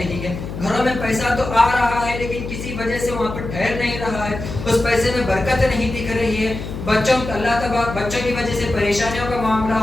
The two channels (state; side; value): noise; left; hum, 8 dB below the sound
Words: ہے، گھروں میں پیسہ تو آ رہا ہے لیکن کسی وجہ سے وہاں پر ٹھہر نہیں رہا ہے، اس پیسے میں برکت نہیں دکھ رہی ہے، بچوں کی وجہ سے پریشانیوں کا معاملہ